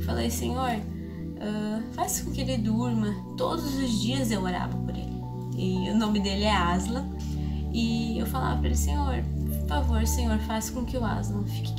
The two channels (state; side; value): identical; both; correlation 1.00